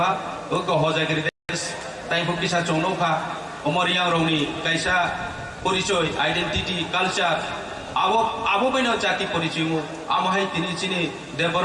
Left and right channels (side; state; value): both; identical; correlation 1.00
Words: ওকে হজাগিরি দেশ তাইফো কিসা চংনৌখা অমরিয়াং রংনি কাইসা পরিচয় আইডেন্টিটি কালচার আবো বাইনো জাতি পরিচয় আমহাই তিনি চিনি